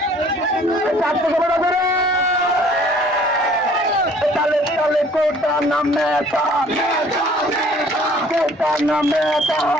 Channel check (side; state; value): both; normal; correlation 0.55